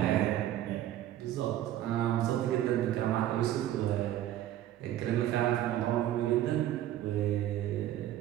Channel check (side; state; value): left; quieter; 12.9 dB